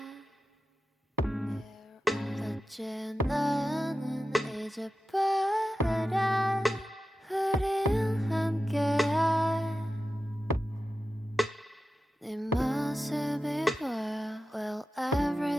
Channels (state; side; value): normal; both; correlation 0.92